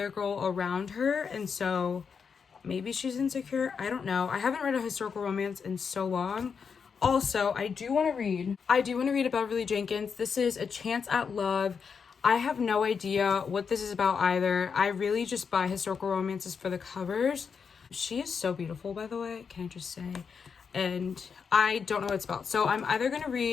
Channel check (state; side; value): quieter; right; 6.1 dB